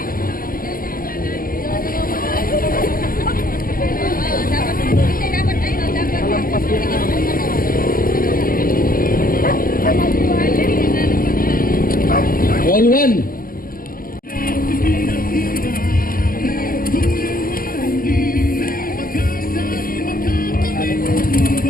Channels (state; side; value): late; right; 0.42 ms